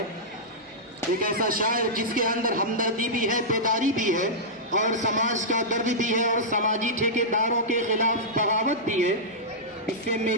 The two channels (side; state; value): both; normal; correlation -0.12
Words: एक ऐसा शायर जिसके अंदर हमदर्दी भी है, बेदारी भी है और समाज का दर्द भी है और समाजी ठेकेदारों के खिलाफ बगावत भी है। इससे